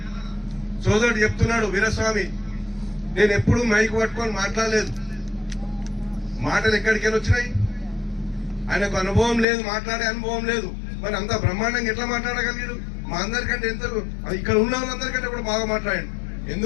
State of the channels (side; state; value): right; drops out; at 9.5 s